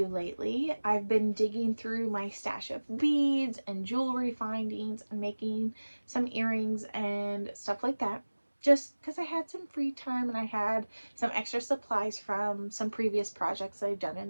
lately, I've been digging through my stash of beads and jewelry findings and making some earrings and stuff like that, just because I had some free time and I had some extra supplies from some previous projects that I've done in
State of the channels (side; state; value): both; inverted; correlation -1.00